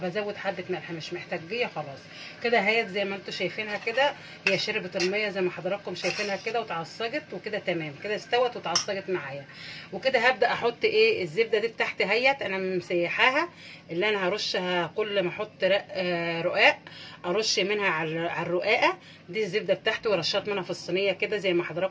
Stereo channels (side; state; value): both; identical; correlation 1.00